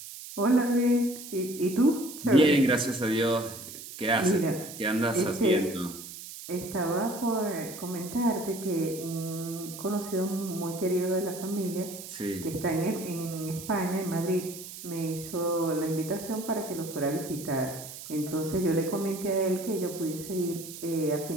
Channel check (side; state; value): right; noise; hiss, 12 dB below the sound